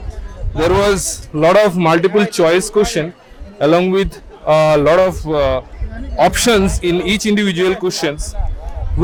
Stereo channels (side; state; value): both; identical; correlation 1.00